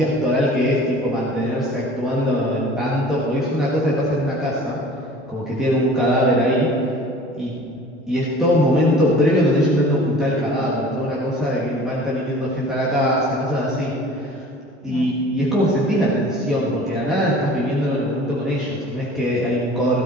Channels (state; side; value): normal; both; correlation 0.45